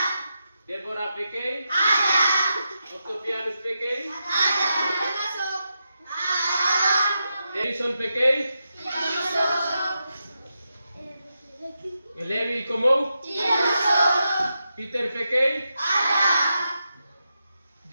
Deborah Pekei. Octavianus Pekei. Edison Pekei. Levi Komou. Peter Pekei.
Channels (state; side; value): inverted; both; correlation -0.87